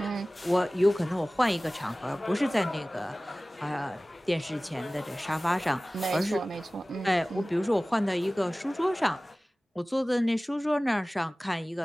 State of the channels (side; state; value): both; normal; correlation 0.98